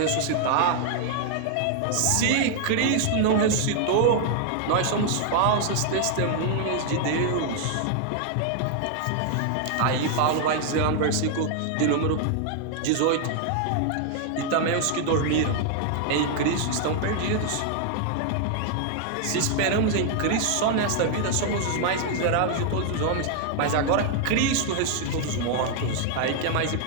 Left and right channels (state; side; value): different; both; correlation 0.00